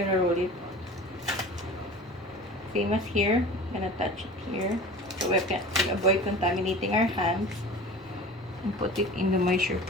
roll it. Same as here. I'm gonna touch it here so we can avoid contaminating our hands. And put it in the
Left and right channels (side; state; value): both; normal; correlation 0.38